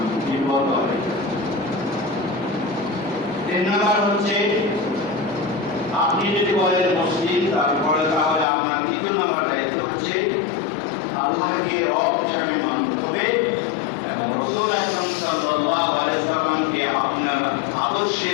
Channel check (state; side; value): drops out; right; at 8.5 s